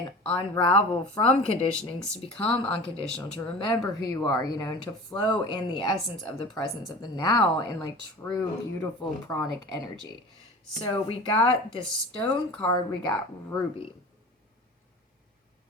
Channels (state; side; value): normal; both; correlation 0.38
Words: unravel from conditionings to become unconditional, to remember who you are, you know, and to flow in the essence of the presence of the now in, like, true, beautiful pranic energy. So we got this stone card, we got Ruby,